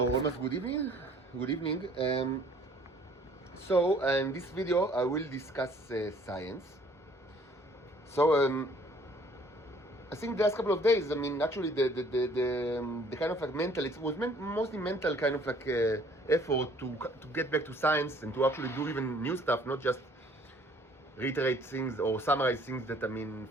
almost good evening. Good evening. So in this video I will discuss science. So I think the last couple of days, I mean, actually the kind of like mental, it was mostly mental kind of like effort to get back to science and to actually do even new stuff, not just reiterate things or summarize things that, I mean,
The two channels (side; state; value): both; normal; correlation 0.57